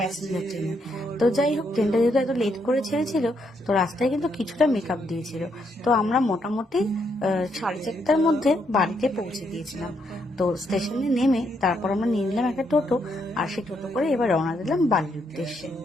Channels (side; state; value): both; normal; correlation 0.76